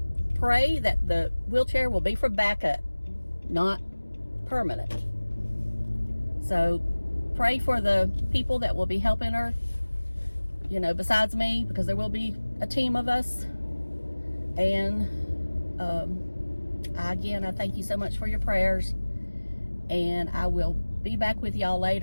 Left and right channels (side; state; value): both; inverted; correlation -1.00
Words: pray that the wheelchair will be for backup, not permanent. So pray for the people that will be helping her, you know, besides me, because there will be a team of us. And again, I thank you so much for your prayers, and I will be back with y'all